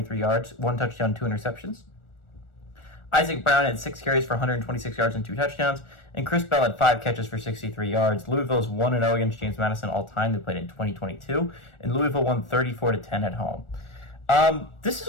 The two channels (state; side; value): late; right; 1.4 ms